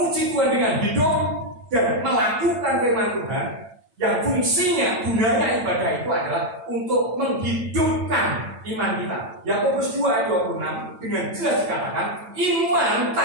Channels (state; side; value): late; left; 8.9 ms